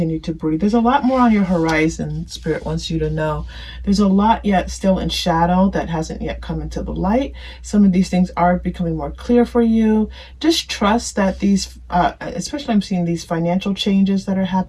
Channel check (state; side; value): identical; both; correlation 1.00